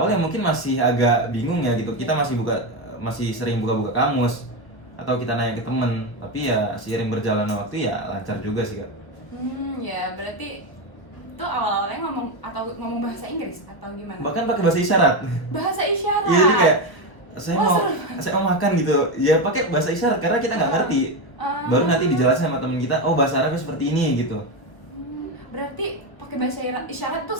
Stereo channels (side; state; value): right; late; 1.2 ms